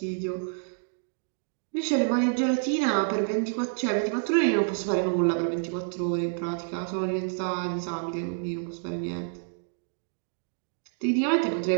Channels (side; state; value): left; silent; 59 dB below the other